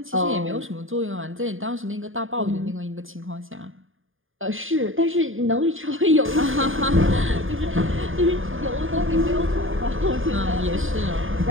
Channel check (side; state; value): left; late; 0.59 ms